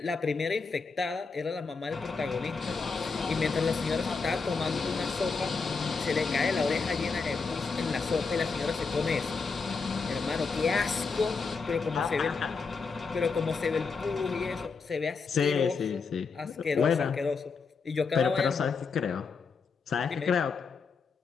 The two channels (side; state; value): right; quieter; 4.8 dB